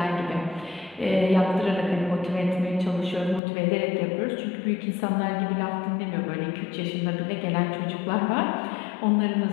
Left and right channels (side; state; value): right; drops out; at 3.4 s